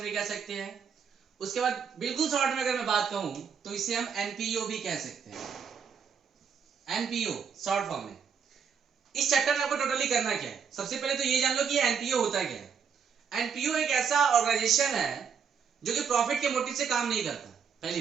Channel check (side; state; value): left; quieter; 6.8 dB